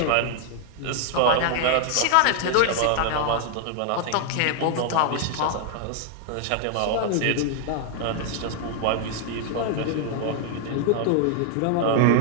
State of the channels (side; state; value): both; different; correlation 0.00